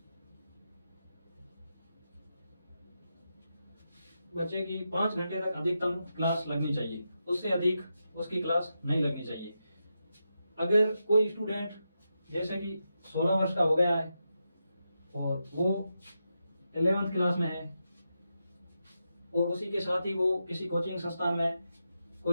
बच्चे की 5 घंटे तक अधिकतम क्लास लगनी चाहिए, उससे अधिक उसकी क्लास नहीं लगनी चाहिए। अगर कोई स्टूडेंट जैसे कि 16 वर्ष का हो गया है और वो 11th क्लास में है और उसी के साथ ही वो किसी कोचिंग संस्थान में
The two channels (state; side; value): inverted; both; correlation -0.87